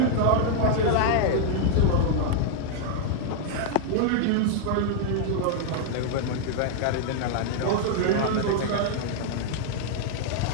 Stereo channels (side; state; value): both; different; correlation 0.00